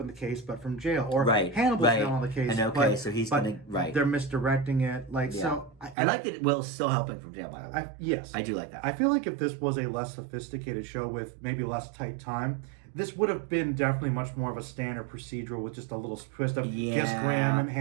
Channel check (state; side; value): drops out; left; at 6.0 s